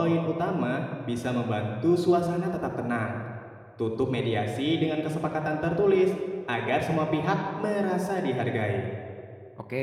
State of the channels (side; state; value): both; identical; correlation 1.00